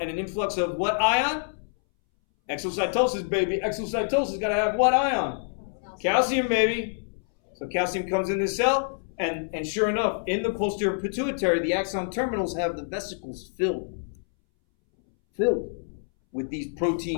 an influx of what ion? Exocytosis, baby. Exocytosis got to have what ion? Calcium, baby. So calcium comes in the cell, and sure enough, in the posterior pituitary, the axon terminals have the vesicles filled with these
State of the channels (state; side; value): silent; right; 61 dB below the other